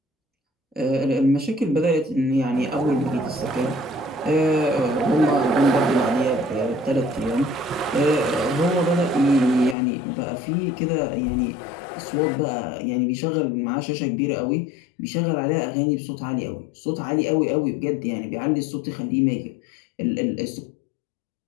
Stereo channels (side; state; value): right; drops out; at 9.8 s